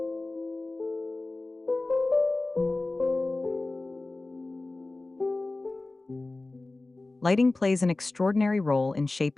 Lighting plays an extraordinary role in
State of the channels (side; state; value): right; quieter; 3.1 dB